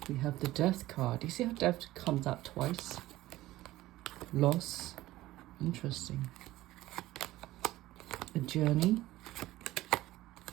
We have the death card. You see how death comes out twice? Loss. Interesting. A journey.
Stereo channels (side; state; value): left; quieter; 16.5 dB